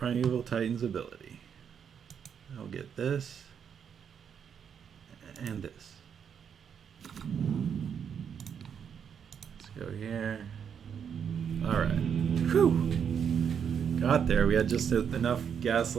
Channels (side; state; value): left; quieter; 7.6 dB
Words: Titan's ability. I'll get this and this. Let's go here. Alright. Whew! Got there. We had just enough gas